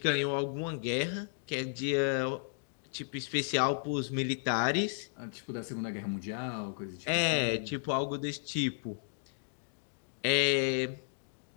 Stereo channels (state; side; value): silent; right; digital silence